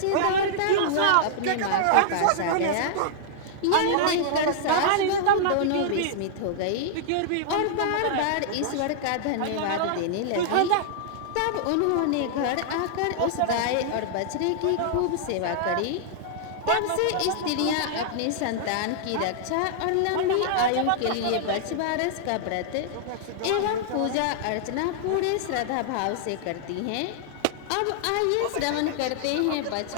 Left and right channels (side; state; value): both; different; correlation -0.01